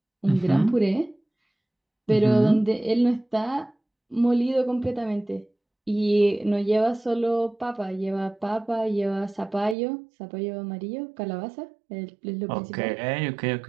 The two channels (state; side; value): drops out; left; at 9.8 s